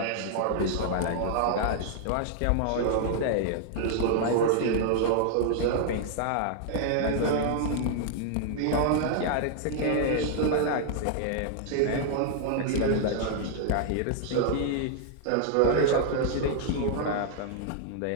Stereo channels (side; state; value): both; different; correlation -0.01